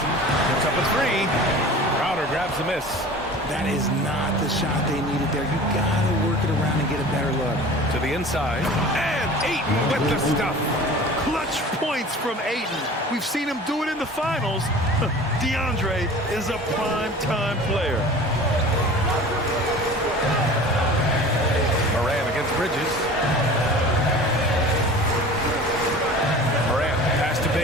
Puts up a 3. Crowder grabs the miss. That is not the shot they needed there. You gotta work it around and get a better look. To the inside. And Ayton with the stuff. Clutch points from Ayton. We've seen him do it in the finals. DeAndre is a prime-time player. Morant against Bridges. Morant, pass to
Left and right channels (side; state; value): both; normal; correlation 0.40